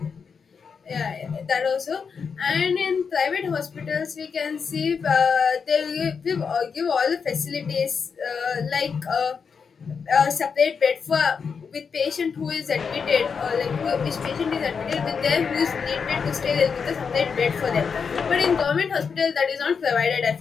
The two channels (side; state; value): right; quieter; 5.9 dB